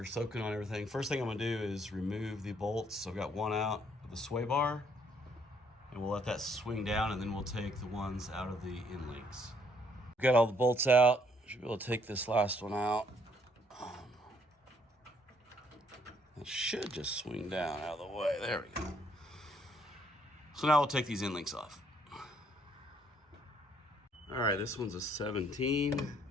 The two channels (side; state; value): both; normal; correlation 0.68